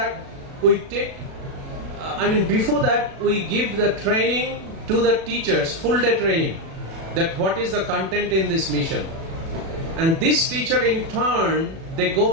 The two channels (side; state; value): left; late; 37 ms